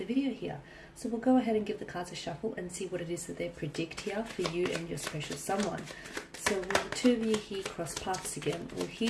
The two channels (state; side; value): identical; both; correlation 1.00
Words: video here. So we'll go ahead and give the cards a shuffle and see what it is that they predict here for you and your special someone. So will the two of you here cross paths again? Will